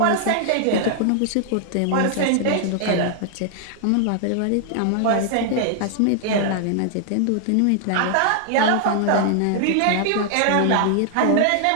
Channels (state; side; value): different; both; correlation 0.00